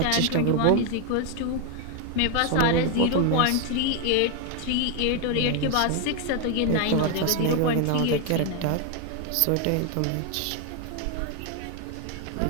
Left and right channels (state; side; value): different; both; correlation 0.01